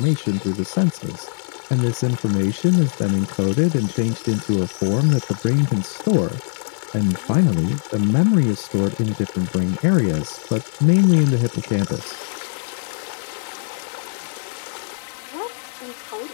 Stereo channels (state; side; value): silent; right; 65 dB below the other